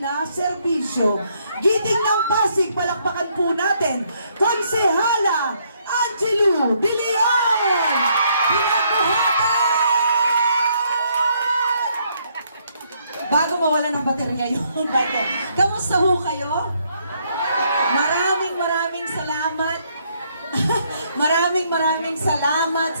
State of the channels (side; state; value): both; inverted; correlation -0.71